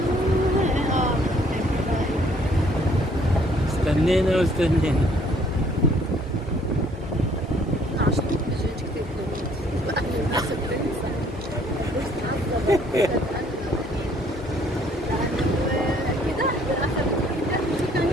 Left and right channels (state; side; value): normal; both; correlation 0.62